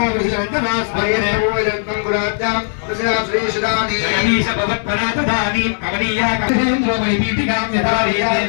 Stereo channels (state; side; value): silent; right; digital silence